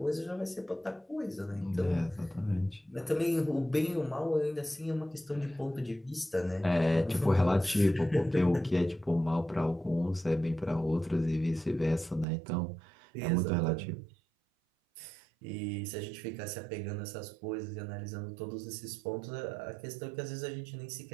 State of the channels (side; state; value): left; drops out; at 12.2 s